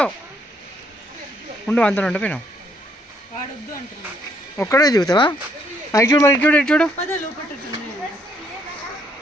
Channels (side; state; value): both; normal; correlation 0.69